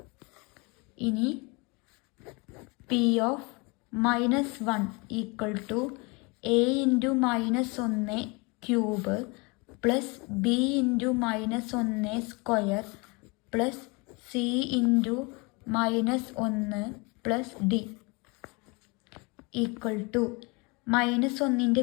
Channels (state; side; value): quieter; right; 28.4 dB